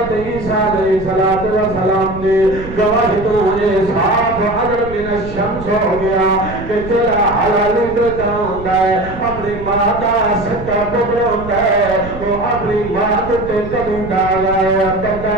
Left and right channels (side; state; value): right; noise; rumble, 12 dB below the sound